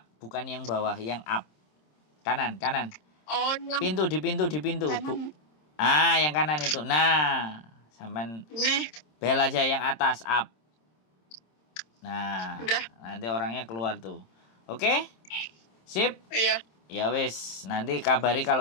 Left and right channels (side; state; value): right; late; 26 ms